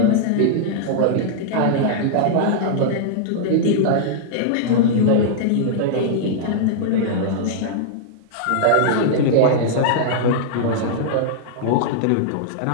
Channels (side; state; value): both; different; correlation -0.01